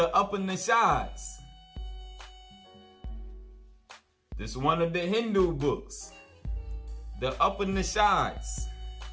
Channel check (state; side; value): identical; both; correlation 1.00